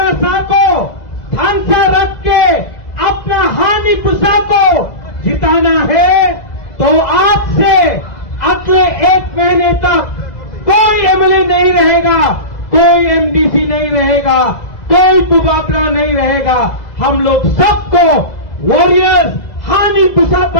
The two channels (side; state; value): right; late; 2.0 ms